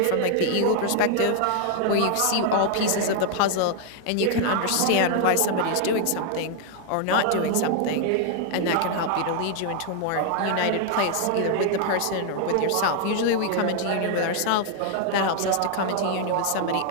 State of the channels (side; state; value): both; different; correlation 0.00